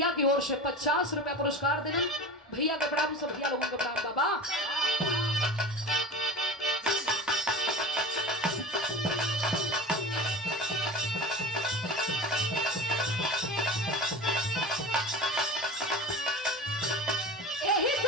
की ओर से 50 रुपया पुरस्कार देना। भैया के प्रणाम, सब भैया लोगों के प्रणाम। बाबा यही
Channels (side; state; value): both; normal; correlation 0.33